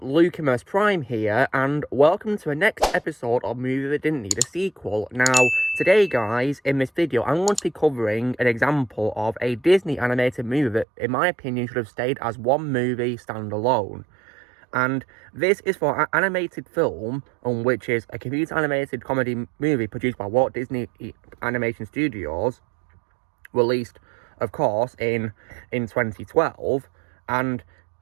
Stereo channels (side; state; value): left; drops out; at 10.9 s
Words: Prime here, and welcome to the next episode of Movie That Didn't Need a Sequel. Now, today guys, in this video, I'm going to be covering an example of a Disney animated movie that, in my opinion, should have stayed as one movie standalone. And this is for an animated film, which is a computer animated comedy movie produced by Walt Disney Animation Studios, released, of course, in 2012, and